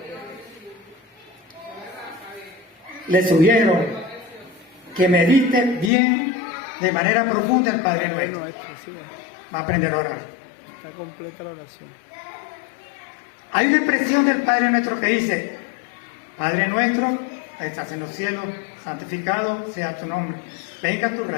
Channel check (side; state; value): right; drops out; at 5.9 s